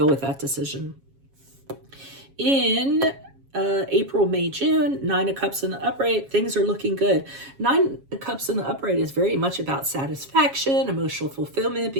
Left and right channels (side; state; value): left; late; 7.3 ms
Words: with that decision. In April, May, June, Nine of Cups in the upright, things are looking good. Nine of Cups in the upright is very much about satisfaction, emotional fulfillment,